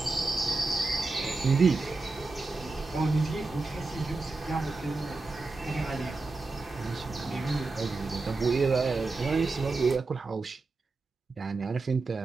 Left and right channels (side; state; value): left; quieter; 3.6 dB